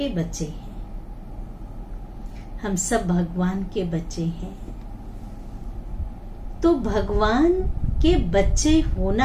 बच्चे हैं, हम सब भगवान के बच्चे हैं। तो भगवान के बच्चे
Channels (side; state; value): both; identical; correlation 1.00